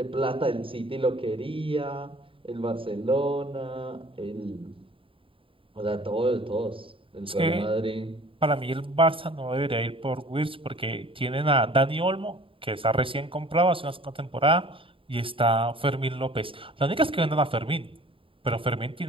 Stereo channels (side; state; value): left; late; 0.26 ms